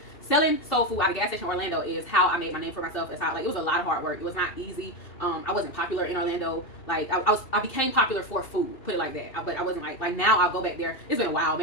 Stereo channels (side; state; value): right; late; 2.7 ms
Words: selling soul food out of gas station Orlando is how I made my name for myself. It's how, like, it was a lot of hard work. It was not easy. I wasn't popular in Orlando. Like, I became popular for food, put it like that. But I wasn't like now I'll go back there. It's been a while,